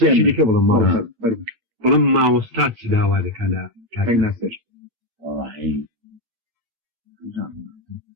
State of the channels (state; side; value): late; left; 8.5 ms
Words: بڵم ماوەستا چ داوا دەکەن لە کاکەی ناسەر